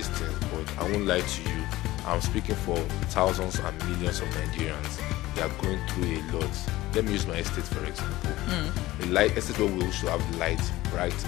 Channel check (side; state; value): right; quieter; 17.5 dB